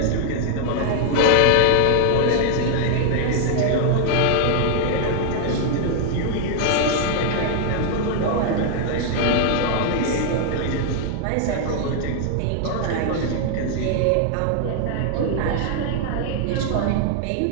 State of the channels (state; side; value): different; both; correlation 0.00